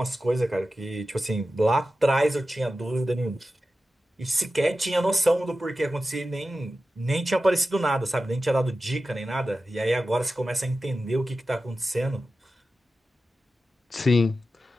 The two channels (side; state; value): both; normal; correlation 0.93